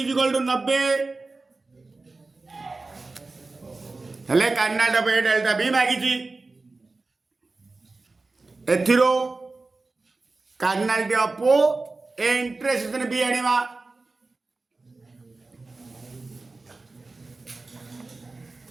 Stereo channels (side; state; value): left; quieter; 3.6 dB